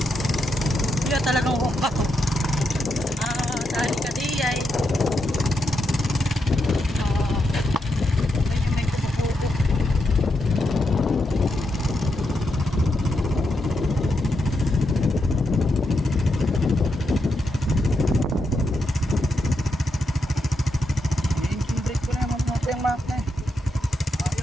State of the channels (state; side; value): normal; both; correlation 0.83